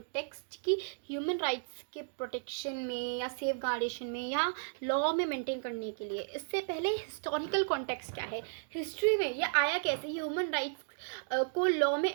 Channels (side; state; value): left; silent; digital silence